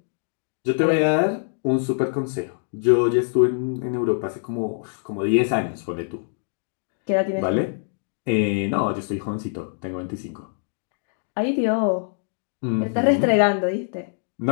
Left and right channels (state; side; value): silent; right; digital silence